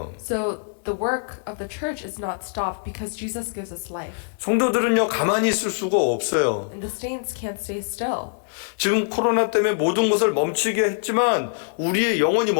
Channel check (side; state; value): right; silent; 63 dB below the other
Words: So the work of the church is not stopped because Jesus gives us life. 성도들은요 가만히 있을 수가 없어요. And the saints can't stay still. 지금 코로나 때문에 모든 것을 멈추게 했지만 우리의 영혼이